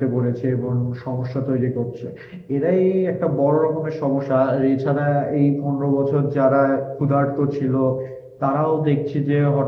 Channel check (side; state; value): both; identical; correlation 1.00